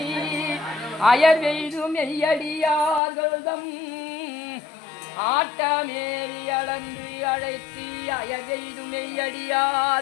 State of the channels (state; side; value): drops out; right; at 3.0 s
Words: அயர்வெய்தும் மெய்யடியார்கள்தம் ஆட்டமேறி அளந்து அழைத்தி அயர்வெய்தும்